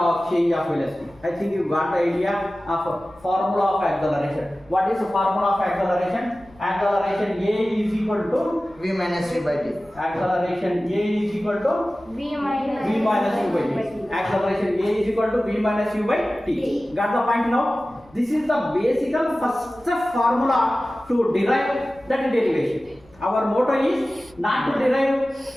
change of velocity. I think you got the idea of formula of acceleration. What is the formula of acceleration? Acceleration A is equal to V minus U by T. acceleration A is equal to V minus V minus U by T. Acceleration A is equal to V minus U by T. Got the point now? This is the basic first formula to derive that derivation. Our motto is not to derive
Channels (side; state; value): left; noise; rumble, 28 dB below the sound